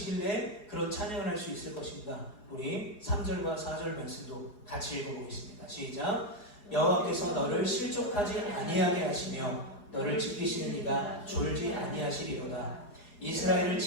그런 찬양을 할 수 있을 것인가? 우리 3절과 4절 말씀도 같이 읽어보겠습니다. 시작. 여호와께서 너를 실족하지 아니하게 하시며 너를 지키시는 이가 졸지 아니하시리로다. 이스라엘을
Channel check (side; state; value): right; late; 4.8 ms